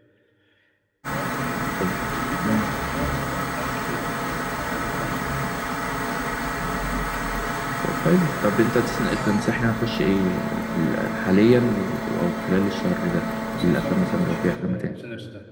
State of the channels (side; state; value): both; identical; correlation 1.00